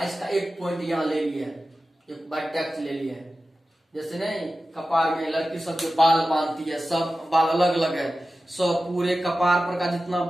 इसका एक पॉइंट यहाँ ले लिया, एक वर्टेक्स ले लिया, जैसे नहीं कपार में लड़की सब जो बाल बांधती है, सब बाल अलग अलग है, सब पूरे कपार पर का जितना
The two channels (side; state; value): both; normal; correlation 0.94